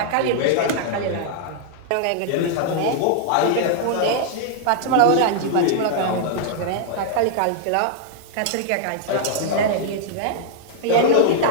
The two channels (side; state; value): both; different; correlation -0.01